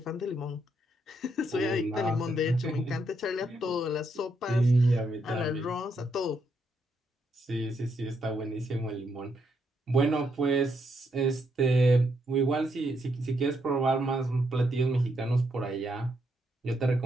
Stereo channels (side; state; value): both; normal; correlation 0.77